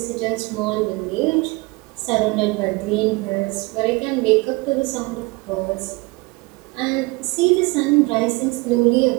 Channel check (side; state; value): left; quieter; 25.1 dB